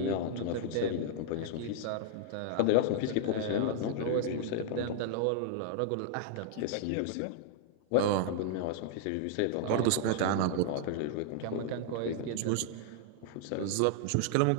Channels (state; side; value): different; both; correlation -0.01